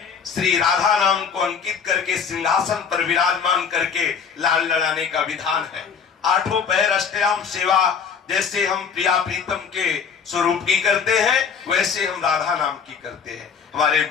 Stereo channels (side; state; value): right; quieter; 6.5 dB